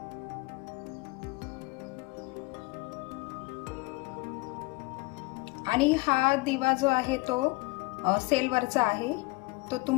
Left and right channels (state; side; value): quieter; right; 24.3 dB